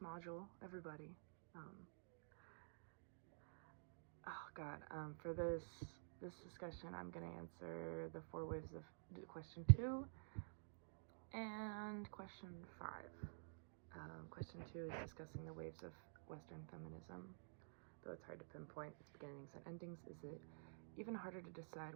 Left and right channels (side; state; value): left; silent; digital silence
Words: module, everybody. Oh God, for this discussion, I'm gonna answer the 4 waves of question 2 and question 5. Question 2 is discussing the waves of Western feminism. Though it's hard to pinpoint its beginnings and endings, is it even harder to